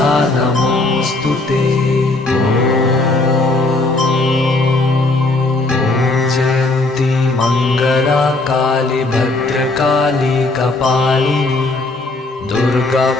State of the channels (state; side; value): quieter; right; 3.0 dB